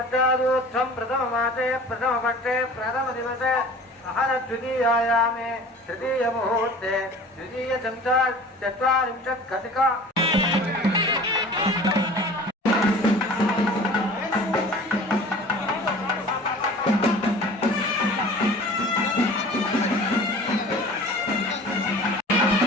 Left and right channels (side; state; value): both; normal; correlation 0.43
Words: प्रथममासे प्रथमपक्षे प्रथमदिवसे अहरद्वितीयायामे तृतीयमुहूर्ते द्वितीयचत्वारिंशत् घटिका